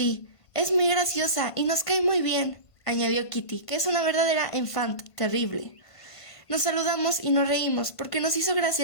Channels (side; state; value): right; late; 1.5 ms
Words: es muy graciosa y nos cae muy bien», añadió Kitty, que es una verdadera enfant terrible. Nos saludamos y nos reímos, porque nos hizo gracia